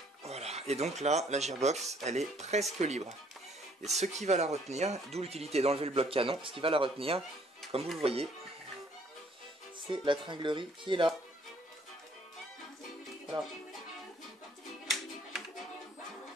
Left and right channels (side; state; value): both; normal; correlation 0.62